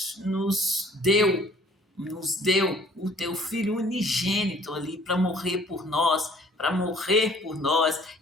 deu o Teu Filho unigênito ali para morrer por nós,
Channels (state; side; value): normal; both; correlation 0.56